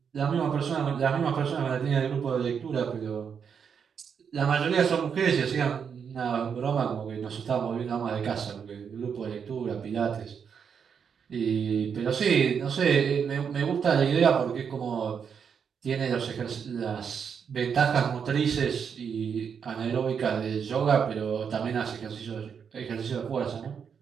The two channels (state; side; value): quieter; left; 6.9 dB